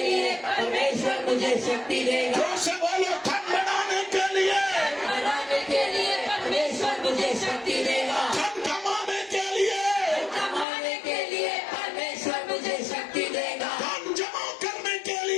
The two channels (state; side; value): drops out; right; at 10.7 s